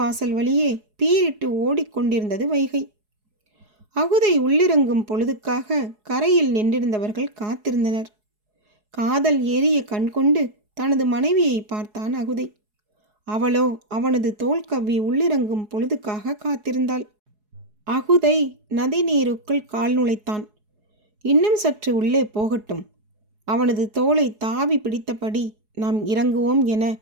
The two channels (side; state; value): left; late; 4.8 ms